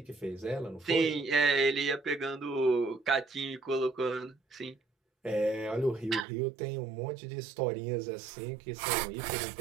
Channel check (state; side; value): drops out; left; at 6.2 s